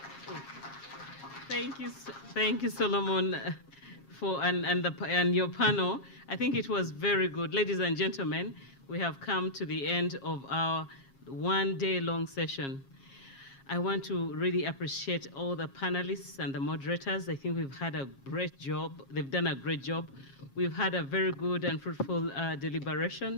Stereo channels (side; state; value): right; late; 7.4 ms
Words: Thank you, Solomon, and your panel. I think it was very good. Ladies and gentlemen, we have come to the end of our one-day-long session. I want to really appreciate all the panelists and the moderators. I think we've had a great job. They've done a great job. We've had a very good and fruitful